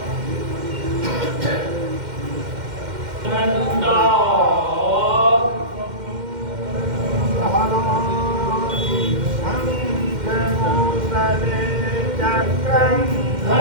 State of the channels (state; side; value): late; left; 2.1 ms